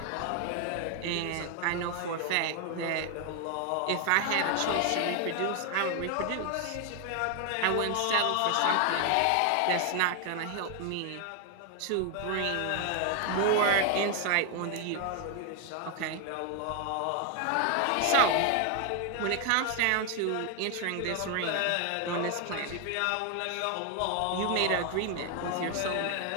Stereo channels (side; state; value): both; different; correlation 0.01